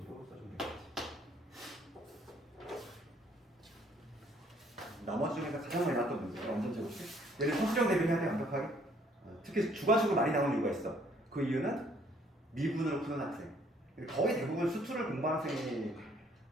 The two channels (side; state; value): both; normal; correlation 0.62